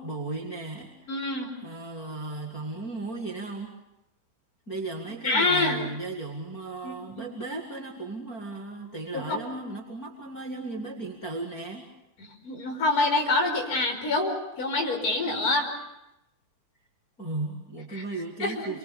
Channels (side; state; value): right; late; 4.4 ms